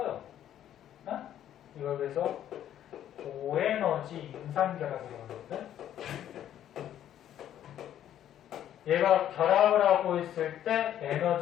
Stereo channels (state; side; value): quieter; right; 11.0 dB